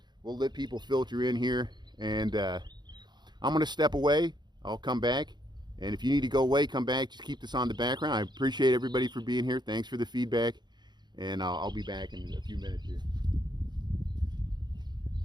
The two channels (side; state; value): left; late; 0.21 ms